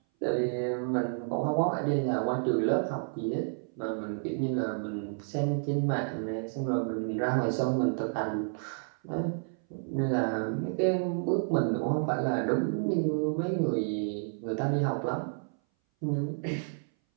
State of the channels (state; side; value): silent; left; 57 dB below the other